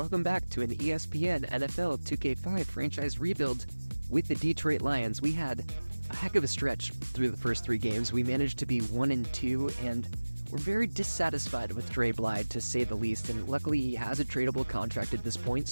back to an ESPN NFL 2K5 franchise rebuild with the Detroit Lions. We had a heck of a stretch through the first three games. We managed to be 1-2, and we're very dissatisfied with Dre Blyde, to say the least, and luckily he has a tradable contract at this point,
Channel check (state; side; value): inverted; both; correlation -1.00